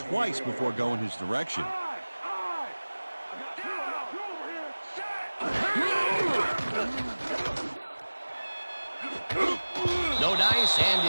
before going his direction. No dice, and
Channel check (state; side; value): inverted; both; correlation -1.00